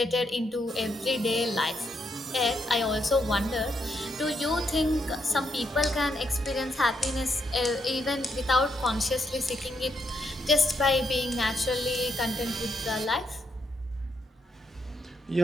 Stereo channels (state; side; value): normal; both; correlation 0.78